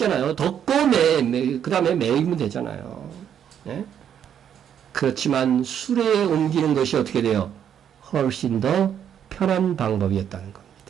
덮고 그 다음에 매이면 되잖아요. 그렇지만 수레에 옮기는 것이 어떻게 돼요? 훨씬 더 편한 방법이었다는 겁니다.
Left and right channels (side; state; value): left; quieter; 9.0 dB